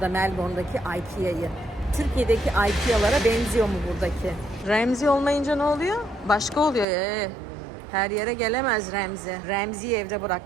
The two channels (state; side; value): drops out; left; at 6.9 s